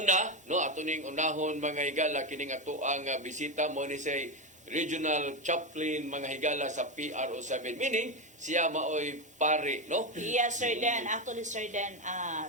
no, ato ning unahon mga higala kining ato ang bisita mo ni say Regional Chaplain mga higala sa PRO7, meaning siya maoy pare, no? Yes, Sir Dan. Actually, Sir Dan,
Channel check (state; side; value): normal; both; correlation 0.13